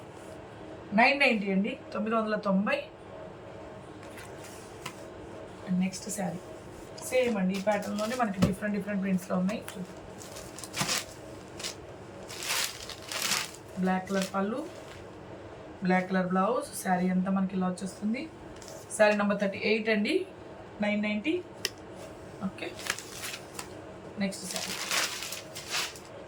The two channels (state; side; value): identical; both; correlation 1.00